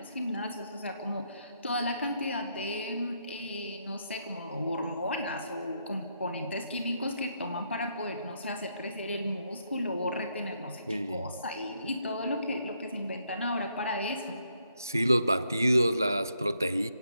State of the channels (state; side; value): inverted; both; correlation -0.76